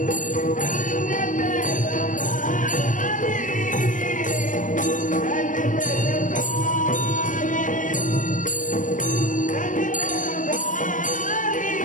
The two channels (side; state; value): right; late; 0.38 ms